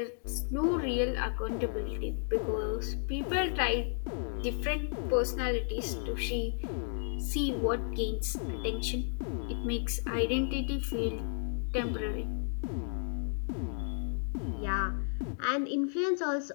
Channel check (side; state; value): right; silent; digital silence